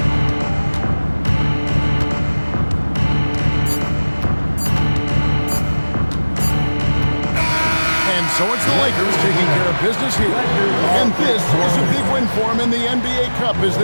And so it's the Lakers taking care of business here. And this is a big win for them in the NBA Cup as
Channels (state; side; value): inverted; both; correlation -1.00